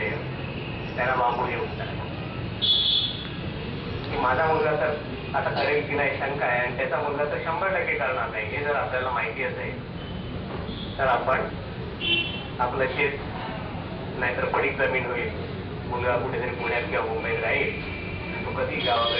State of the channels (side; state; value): both; identical; correlation 1.00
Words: त्यांना बांबू घेऊन माझा मुलगा तर आता करेल की नाही शंका आहे आणि त्याचा मुलगा तर 100% करणार नाही हे जर आपल्याला माहिती असेल तर आपण आपलं शेत नाहीतर पडीक जमीन होईल. मुलगा कुठेतरी पुण्यात किंवा मुंबईत राहील तो कधी